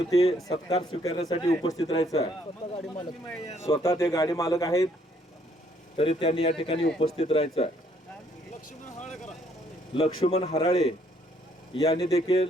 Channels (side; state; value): both; normal; correlation 0.66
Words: सत्कार स्वीकारण्यासाठी उपस्थित राहायचं आहे। स्वतः ते गाडी मालक आहेत तरी त्यांनी या ठिकाणी उपस्थित राहायचं आहे। लक्ष्मण हराळे यांनी